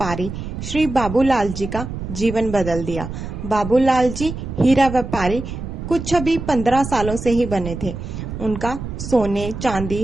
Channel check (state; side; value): noise; right; rumble, 7 dB below the sound